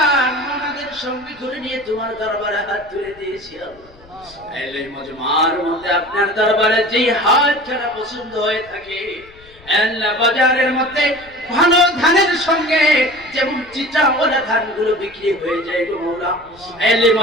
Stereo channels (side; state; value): left; noise; rumble, 25 dB below the sound